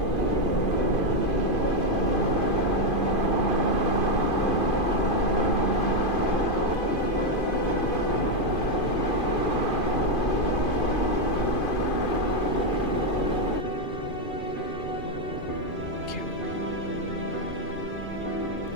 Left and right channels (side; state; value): right; late; 2.5 ms